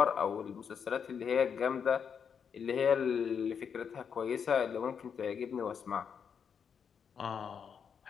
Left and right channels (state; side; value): quieter; right; 7.0 dB